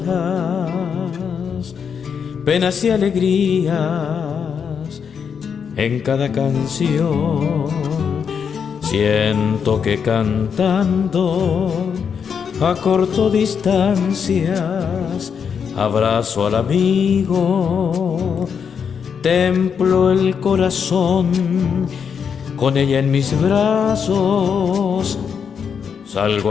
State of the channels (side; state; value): right; quieter; 6.9 dB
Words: penas y alegrías en cada canción. Siento que cantando acorto distancias, abrazo al amigo, templo el corazón con ella en mis brazos.